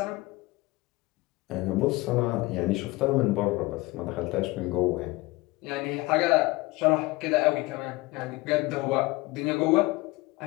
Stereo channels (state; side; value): quieter; right; 21.5 dB